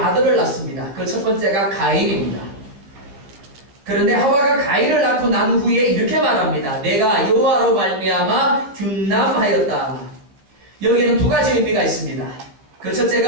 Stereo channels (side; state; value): left; late; 15 ms